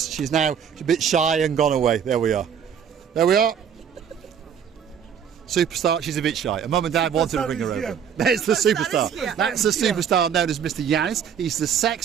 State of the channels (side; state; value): left; quieter; 8.0 dB